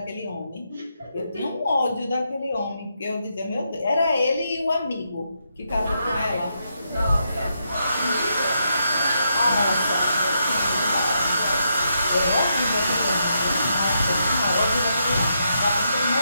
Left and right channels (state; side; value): inverted; both; correlation -0.81